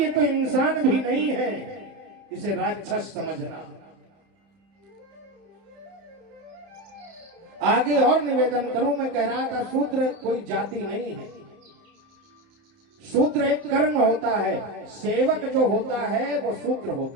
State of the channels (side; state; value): left; late; 30 ms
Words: तो इंसान भी नहीं है, इसे राक्षस समझना। आगे और निवेदन करूं, मैं कह रहा था शूद्र कोई जाति नहीं है, शूद्र एक कर्म होता है। सेवक जो होता है वो शूद्र